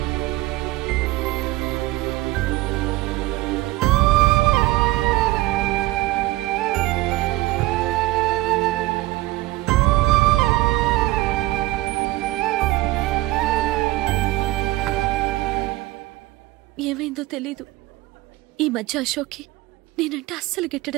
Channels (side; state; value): left; quieter; 18.4 dB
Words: ఏమైందో తెలీదు. ఈ మధ్య అశోక్కి నేనంటే అస్సలు